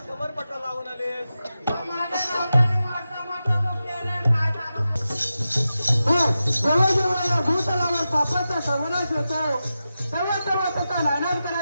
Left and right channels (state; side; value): inverted; both; correlation -0.91